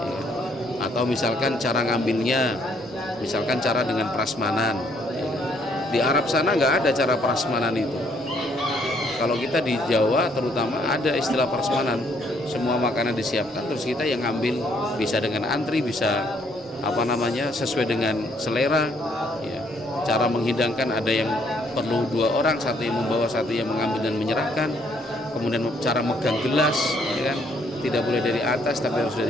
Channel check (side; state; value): both; normal; correlation 0.68